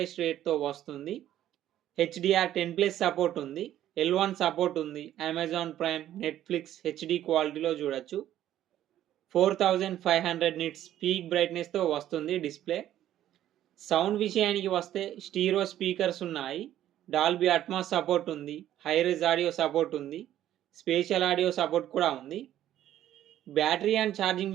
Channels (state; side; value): quieter; left; 12.2 dB